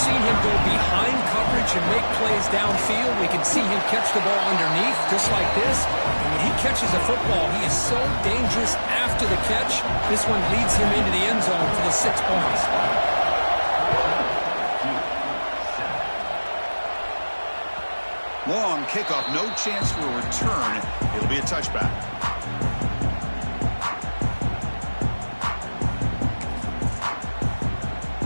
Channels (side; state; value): both; inverted; correlation -1.00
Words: him go behind coverage and make plays downfield. We can see him catch the ball underneath, just like this. And when he catches a football, he is so dangerous after the catch. This one leads him into the end zone for the 6 points. Long kickoff, no chance for a return. It'll be a touchback.